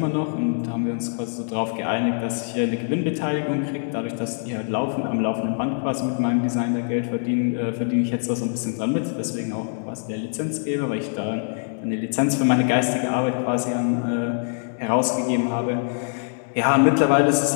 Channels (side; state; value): right; silent; digital silence